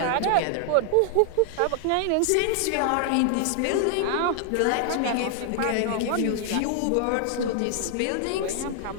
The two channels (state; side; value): different; both; correlation 0.00